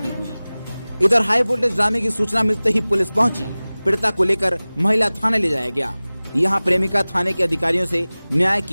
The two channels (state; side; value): inverted; both; correlation -0.99